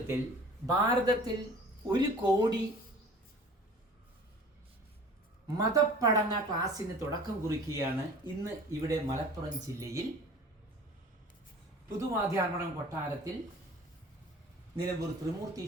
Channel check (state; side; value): normal; both; correlation 0.44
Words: ഭാരതത്തിൽ 1 കോടി മതപ്പഠന ക്ലാസ്സിന് തുടക്കം കുറിക്കുകയാണ് ഇന്ന് ഇവിടെ മലപ്പുറം ജില്ലയിൽ പുതുമാധ്യാർമണം കൊട്ടാരത്തിൽ നിലമ്പൂർ ത്രിമൂർത്തി